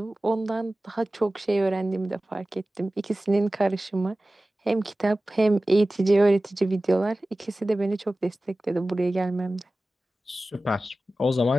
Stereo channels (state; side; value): normal; both; correlation 0.96